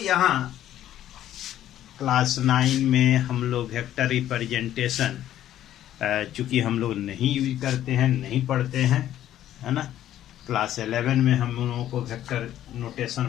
क्लास 9 में हम लोग वेक्टर रिप्रेजेंटेशन चूंकि हम लोग नहीं यूज करते हैं, नहीं पढ़ते हैं, है ना। क्लास 11 में हम लोगों को वेक्टर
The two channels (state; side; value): quieter; right; 12.2 dB